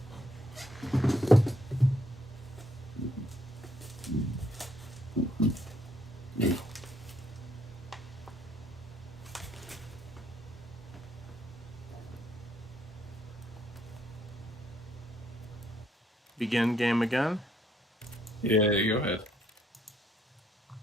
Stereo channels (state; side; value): normal; both; correlation 0.71